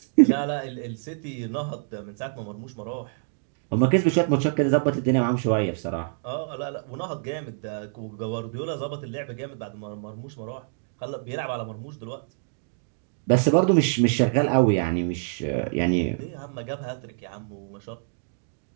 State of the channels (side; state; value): left; silent; digital silence